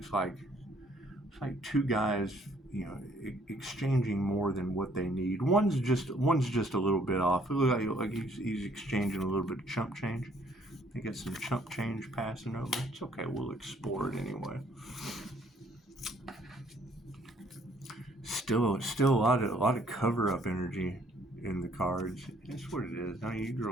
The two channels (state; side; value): normal; both; correlation 0.63